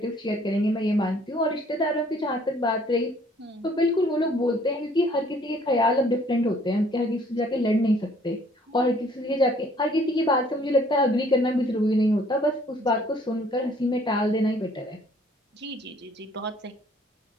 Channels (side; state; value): both; normal; correlation 0.59